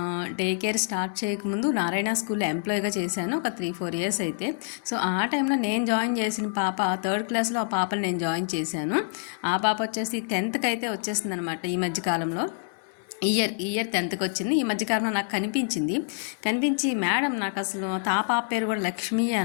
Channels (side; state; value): right; silent; 60 dB below the other